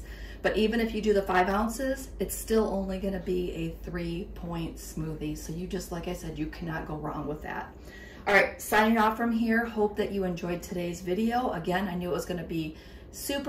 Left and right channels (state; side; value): identical; both; correlation 1.00